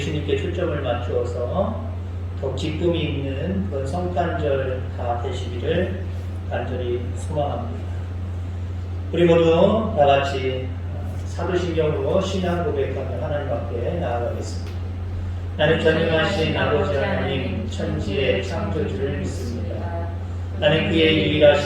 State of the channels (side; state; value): both; identical; correlation 1.00